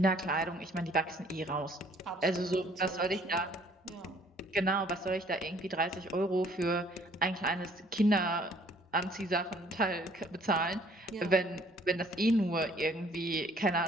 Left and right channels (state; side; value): normal; both; correlation 0.59